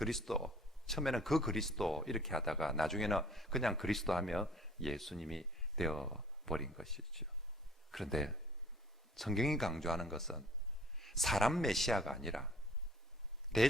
처음에는 그 그리스도 이렇게 하다가 나중에는 그냥 그리스도 하면 예수님이 되어버린 것이죠. 그런데 성경이 강조하는 것은 사람 메시아가 아니라,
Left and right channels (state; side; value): normal; both; correlation 0.53